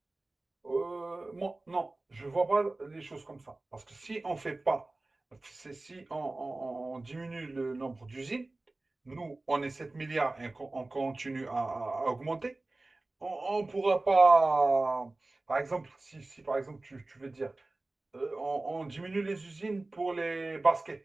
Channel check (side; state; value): left; quieter; 3.0 dB